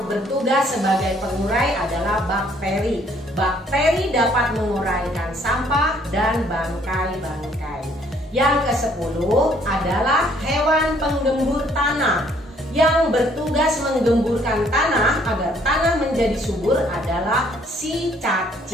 bertugas sebagai pengurai adalah bakteri. Bakteri dapat menguraikan sampah dan bangkai-bangkai. Yang kesepuluh adalah hewan penggembur tanah. Yang bertugas menggemburkan tanah agar tanah menjadi subur adalah si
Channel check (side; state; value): both; normal; correlation 0.63